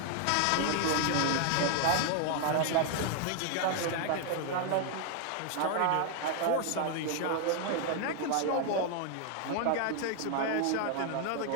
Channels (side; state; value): both; different; correlation 0.00